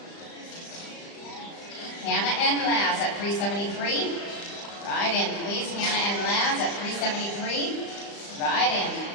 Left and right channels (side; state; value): right; late; 35 ms